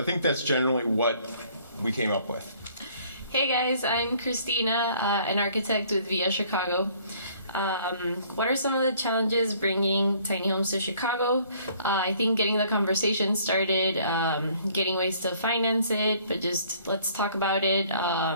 think that's generally what we came up with. Hey guys, I'm Christina, an architect with Via Chicago. What are some of the challenges bringing tiny homes to Chicago? I think getting the conversation started, getting ways to finance it, but just let's talk about it.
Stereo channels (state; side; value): inverted; both; correlation -0.59